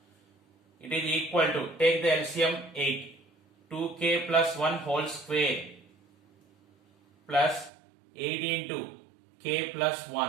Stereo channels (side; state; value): left; drops out; at 7.7 s